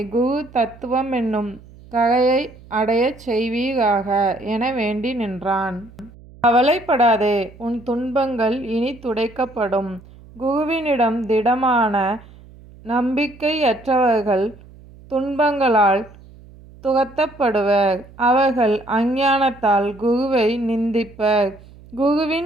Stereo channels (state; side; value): noise; right; hum, 22 dB below the sound